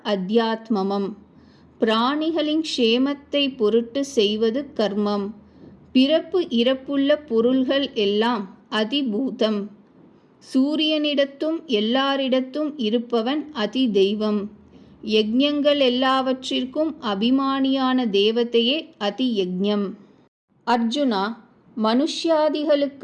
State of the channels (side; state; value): both; identical; correlation 1.00